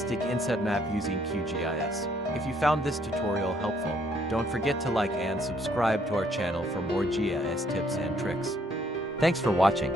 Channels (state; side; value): normal; both; correlation 0.67